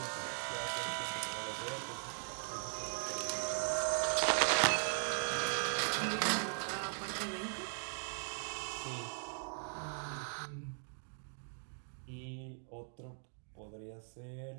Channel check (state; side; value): silent; left; 51 dB below the other